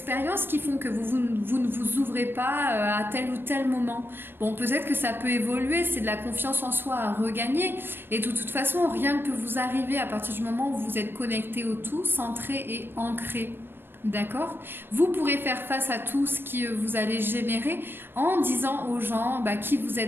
qui font que vous ne vous ouvrez pas à tel ou tel moment. Bon, peut-être que ça peut évoluer, c'est de la confiance en soi à regagner. Et de toute façon, rien ne peut vous arriver à partir du moment où vous êtes connecté au tout, centré et ancré. D'accord? Vous pourrez faire face à tout ce que vous allez générer en disant aux gens bah, qui vous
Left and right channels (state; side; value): late; left; 0.10 ms